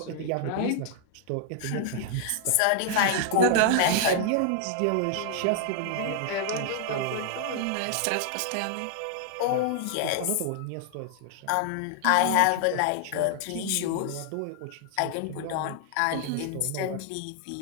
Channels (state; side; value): different; both; correlation -0.01